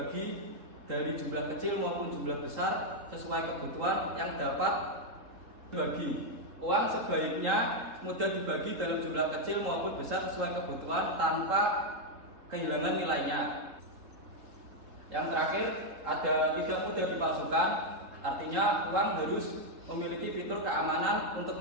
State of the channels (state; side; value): late; left; 3.7 ms